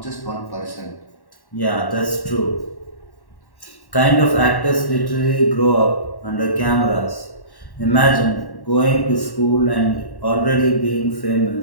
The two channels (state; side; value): late; right; 1.1 ms